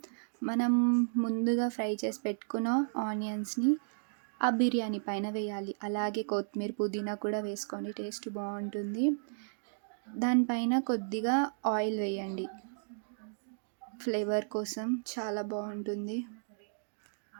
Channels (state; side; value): silent; left; digital silence